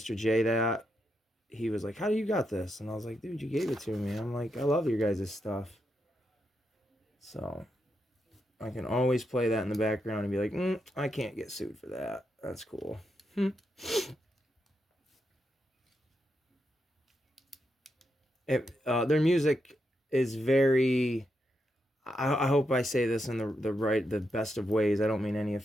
J, that, he was like, "How do you got this?" And I was like, "Dude, you gave it to me." I'm like, "I love your guys' stuff." So I can always play that in the background and be like, I can't get sued for that. That's cool. Their music is very. I hope I say this in the best of ways. I don't mean any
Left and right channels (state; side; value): normal; both; correlation 0.84